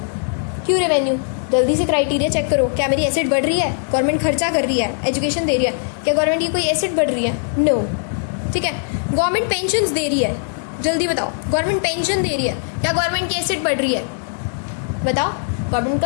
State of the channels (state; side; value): silent; right; digital silence